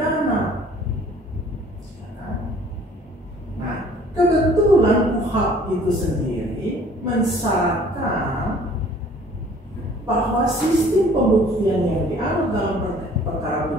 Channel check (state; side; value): normal; both; correlation 0.54